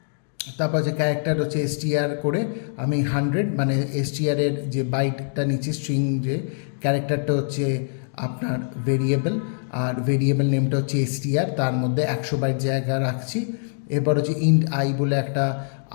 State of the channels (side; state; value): right; silent; digital silence